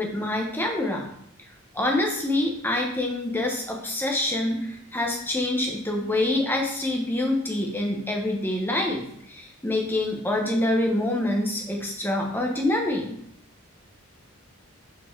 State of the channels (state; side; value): normal; both; correlation 0.62